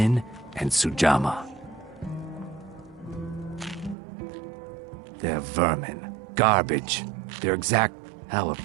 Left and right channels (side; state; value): left; drops out; at 4.0 s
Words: and Sujama. They're vermin. Garbage. They're exact... How